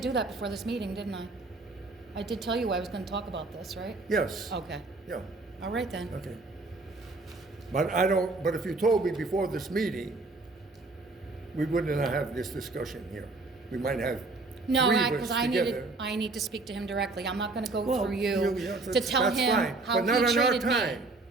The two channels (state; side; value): quieter; left; 3.4 dB